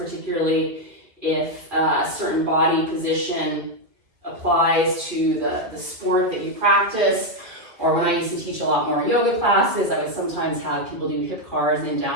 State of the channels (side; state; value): left; late; 2.2 ms